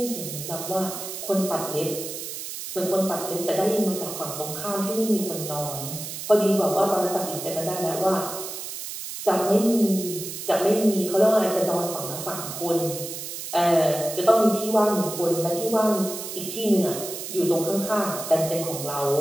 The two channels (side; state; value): right; noise; hiss, 8 dB below the sound